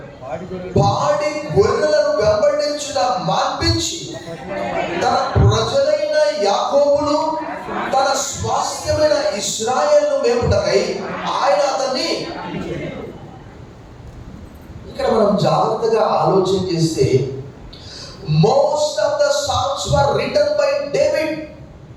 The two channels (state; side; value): identical; both; correlation 1.00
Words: పాడి గొర్రెలను వెంబడించుట మాన్పించి తన ప్రజలైన యాకోబును తన స్వాస్థ్యమైన ఇశ్రాయేలును మేపుటకై ఆయన అతన్ని. ఇక్కడ మనం జాగ్రత్తగా ఆలోచన చేస్తే, most of the psalms were written by David.